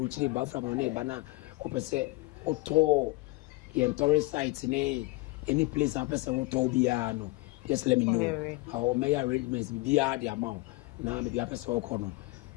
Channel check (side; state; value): right; quieter; 21.8 dB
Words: ba fra no ba na opese oto ye tourist site ne any place opese oto bia no. Just let me know how my arrangements bia the amount. Na me bia opese okono.